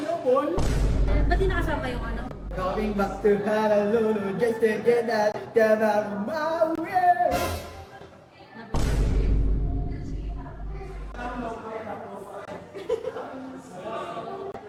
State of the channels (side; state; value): both; identical; correlation 1.00